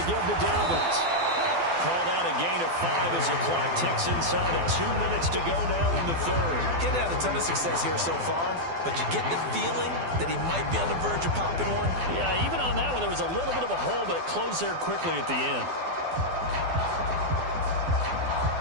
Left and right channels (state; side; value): late; left; 12 ms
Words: give to Dobbins. Called out a gain of 5 as the clock ticks inside of 2 minutes to go now in the 3rd. He hadn't had a ton of success here so far, but you get the feeling that he might be on the verge of popping one. Yeah, even on that one, there was a little bit of a hole, but it closed there quickly at the end.